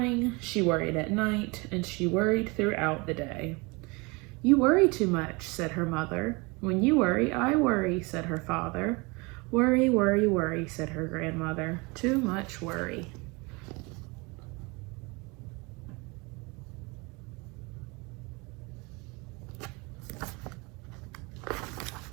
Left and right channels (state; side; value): quieter; left; 27.2 dB